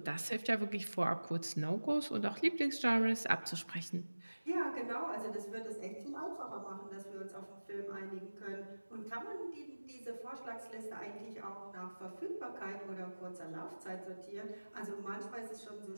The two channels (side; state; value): both; inverted; correlation -1.00